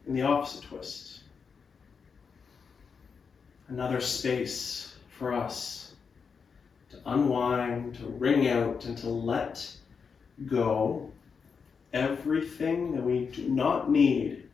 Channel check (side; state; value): right; quieter; 5.8 dB